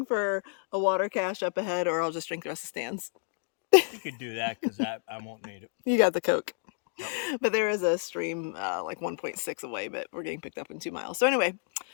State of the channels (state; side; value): silent; right; digital silence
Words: for a water cache up ahead, or I'll just drink the rest of Stan's. You could do that because I won't need it. You got the Coke. But there is a stream like 1.6 away, but we're getting picked up in 2 miles. So anyway,